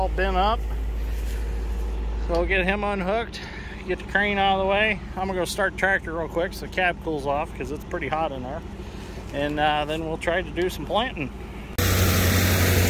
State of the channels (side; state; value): both; identical; correlation 1.00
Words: bent up. So we'll get him unhooked, get the crane out of the way. I'm gonna go start the tractor real quick so the cab cools off because it's pretty hot in there. And then we'll try to do some planting.